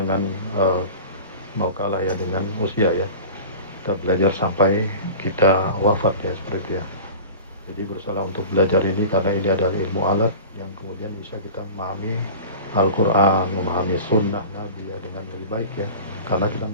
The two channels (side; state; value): both; inverted; correlation -0.36